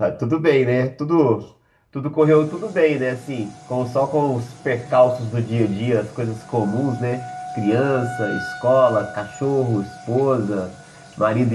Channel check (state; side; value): identical; both; correlation 1.00